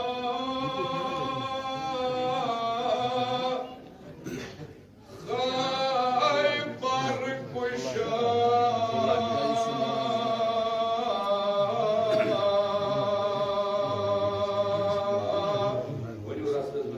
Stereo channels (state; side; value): identical; both; correlation 1.00